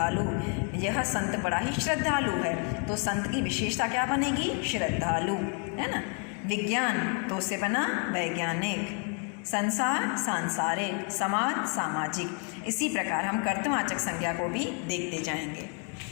यह संत बड़ा ही श्रद्धालु है तो संत की विशेषता क्या बनेगी, श्रद्धालु, है ना। विज्ञान तो उससे बना वैज्ञानिक, संसार सांसारिक, समाज सामाजिक। इसी प्रकार हम कर्तवाचक संज्ञा को भी देखते जाएंगे।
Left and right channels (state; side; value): quieter; right; 36.2 dB